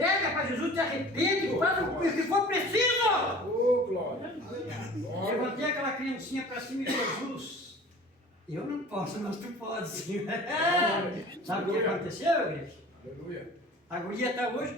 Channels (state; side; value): normal; both; correlation 0.43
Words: para Jesus, te arrepende, faz o que for preciso. Oh, glória! Levantei aquela criancinha para cima de Jesus. Eu não posso, mas tu pode sim. Sabe o que aconteceu, igreja? Aleluia! A guria está hoje,